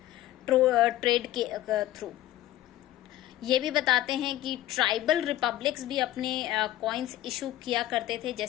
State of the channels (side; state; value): right; quieter; 14.2 dB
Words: ट्रेड के थ्रू। ये भी बताते हैं कि ट्राइबल रिपब्लिक्स भी अपने कॉइन्स इशू किया करते थे,